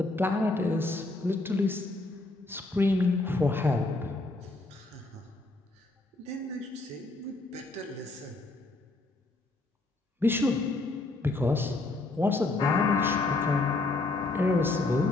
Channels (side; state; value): right; quieter; 3.1 dB